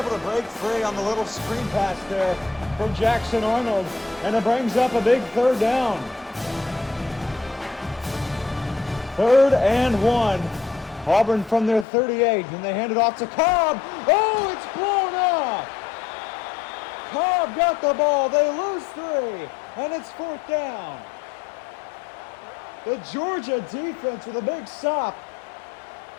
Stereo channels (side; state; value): right; drops out; at 11.9 s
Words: to break free on the little screen pass there from Jackson Arnold, and it brings up a big third down. 3rd and 1. Auburn from their 38, and they hand it off to Cobb. Oh, it's blown up! Cobb got the ball. They lose 3, and it's 4th down. The Georgia defense with a big stop,